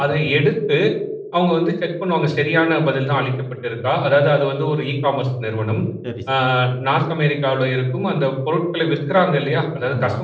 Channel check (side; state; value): both; identical; correlation 1.00